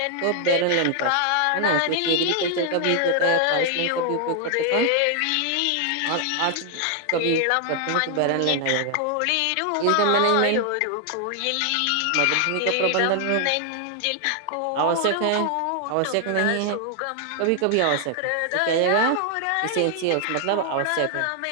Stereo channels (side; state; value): both; different; correlation 0.00